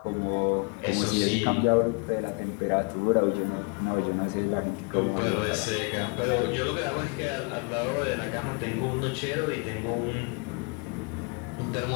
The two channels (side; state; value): right; quieter; 31.3 dB